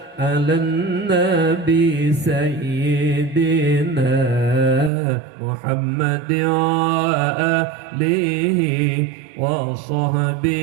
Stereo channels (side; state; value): left; drops out; at 4.9 s